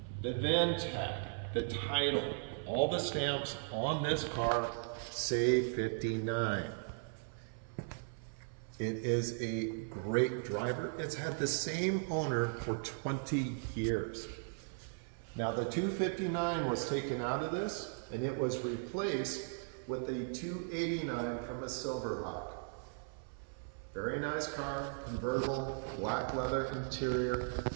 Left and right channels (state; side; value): silent; left; 53 dB below the other